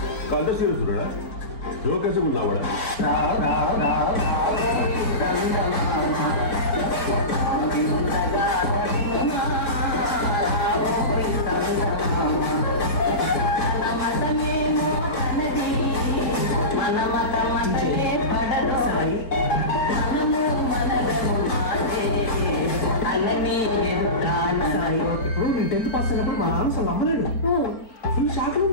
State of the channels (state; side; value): late; right; 4.5 ms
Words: కంట సీరియస్డా జోకేసి ఉన్నావా ఇప్పుడు నేను 10th పాస్ అయినప్పుడు మా నాన్న అసలు నమ్మలేడు. ఫుల్ షాక్